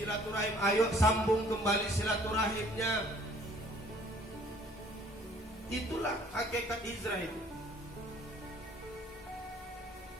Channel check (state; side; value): normal; both; correlation 0.57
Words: ayo sambung kembali silaturahimnya. Itulah hakikat hijrah itu.